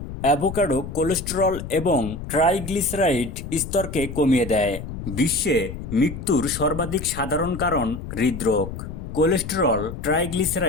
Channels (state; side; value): noise; left; rumble, 9 dB below the sound